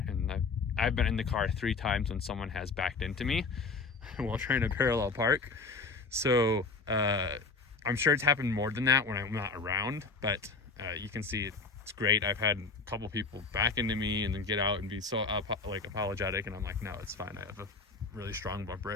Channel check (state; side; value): quieter; right; 4.3 dB